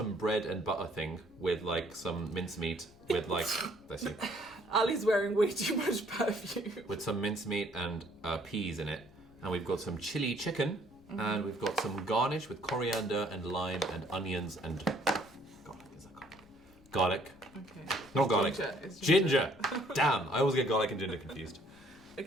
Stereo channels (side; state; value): left; noise; rumble, 26 dB below the sound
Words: bread and butter thing with like some mincemeat with like... Bless you. Ali's wearing way too much perfume. With some mincemeat and peas in it. And we've got some chili chicken. Mm-hmm. And we've got some garnish with coriander and lime and onions and... Garlic, is that garlic? Garlic. Okay. Not garlic. Ginger. It's Ginger. Damn, I always get garlic and ginger confused.